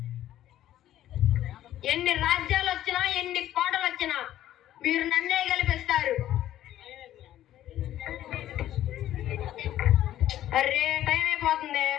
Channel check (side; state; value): right; quieter; 12.7 dB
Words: ఎన్ని రాజ్యాలు వచ్చినా ఎన్ని కోటలు వచ్చినా మీరు నన్నే గెలిపిస్తారు. అరే టైం అయిపోతుంది.